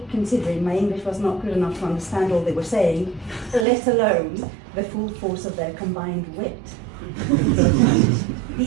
considering my English was not good enough to understand all they were saying, let alone the full force of their combined wit. The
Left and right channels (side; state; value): left; drops out; at 3.7 s